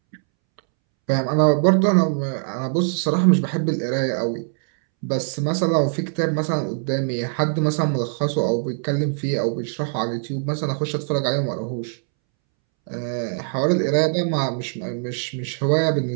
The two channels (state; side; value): silent; left; 64 dB below the other